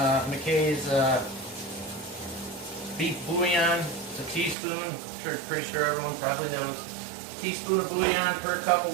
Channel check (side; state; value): left; drops out; at 4.5 s